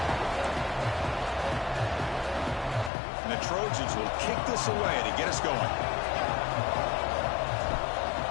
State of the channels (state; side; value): drops out; right; at 2.9 s